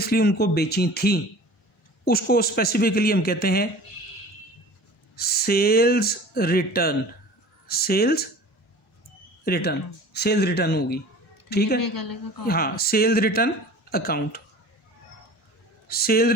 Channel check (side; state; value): both; normal; correlation 0.42